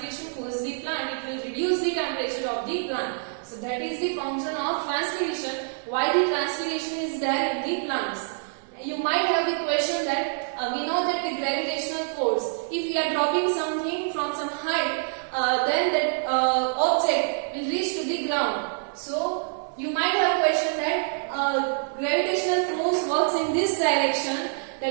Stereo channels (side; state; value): left; silent; 61 dB below the other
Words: cools the plant. It will reduce the temperature of the plant. So that is the function of transpiration. Why the transpiration is there in the plants? You might have the question that we know that the gravitational force, if we are dropping something from some height, then that object will reach to the ground. So you might have question that gravitational force works in this direction.